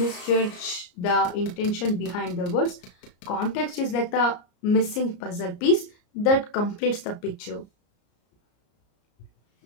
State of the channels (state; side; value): late; right; 34 ms